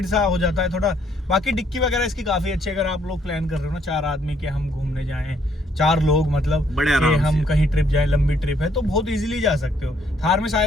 सा हो जाता है थोड़ा। बाकी डिक्की वगैरह इसकी काफी अच्छी है, अगर आप लोग प्लान कर रहे हो ना 4 आदमी के हम घूमने जाएं, 4 लोग मतलब बड़े आराम हम से कहीं ट्रिप जाएं, लंबी ट्रिप है तो बहुत इजीली जा सकते हो। थार में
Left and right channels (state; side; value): normal; both; correlation 0.68